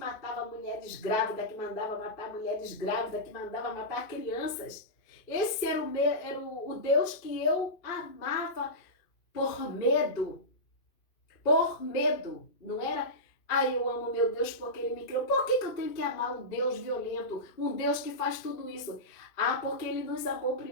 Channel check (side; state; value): right; late; 2.5 ms